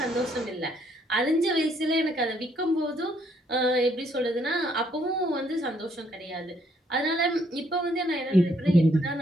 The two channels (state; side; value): normal; both; correlation 0.69